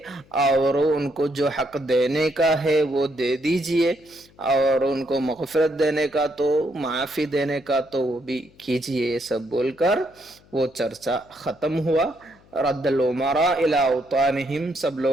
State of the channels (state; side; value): noise; left; hum, 28 dB below the sound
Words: اور ان کو جو حق دینے کا ہے وہ دے دیجئے اور ان کو مغفرت دینے کا تو معافی دینے کا تو وہ بھی کیجئے. یہ سب بول کر وہ چرچا ختم ہوا. رد الامراء الى اوطانہم سب